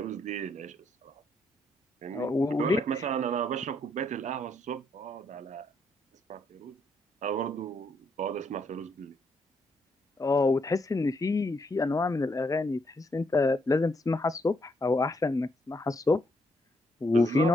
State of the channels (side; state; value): both; normal; correlation 0.74